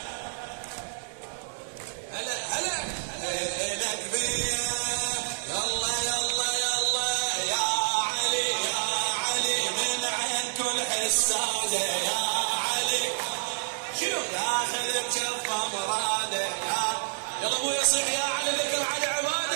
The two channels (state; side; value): silent; left; digital silence